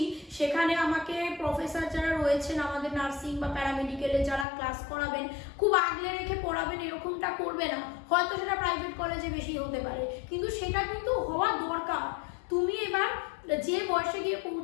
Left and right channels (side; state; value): right; drops out; at 4.5 s